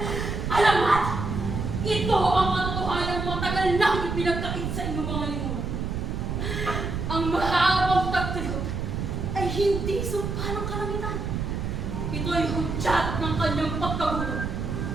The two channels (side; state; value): right; noise; rumble, 3 dB below the sound